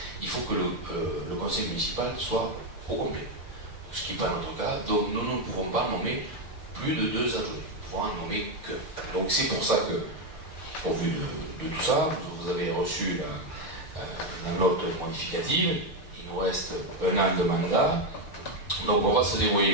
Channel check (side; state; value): right; late; 6.7 ms